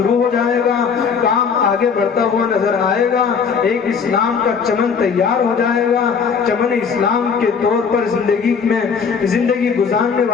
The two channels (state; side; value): quieter; right; 6.1 dB